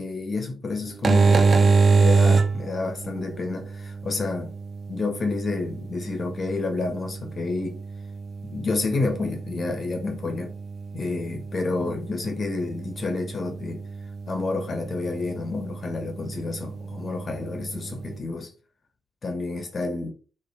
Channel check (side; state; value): both; normal; correlation 0.88